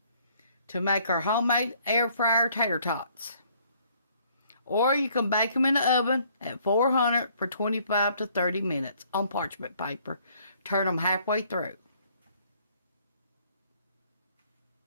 To make our homemade air fryer tater tots. Or you can bake them in the oven at 400 for 25 to 30 minutes on parchment paper. Turn them halfway through.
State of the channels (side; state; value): both; inverted; correlation -0.63